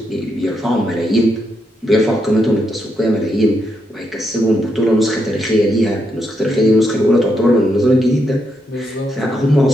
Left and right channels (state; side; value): normal; both; correlation 0.80